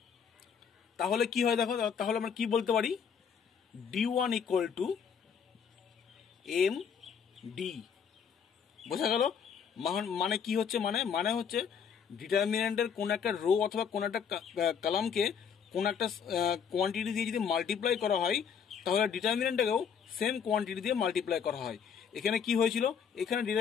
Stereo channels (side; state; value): right; quieter; 7.1 dB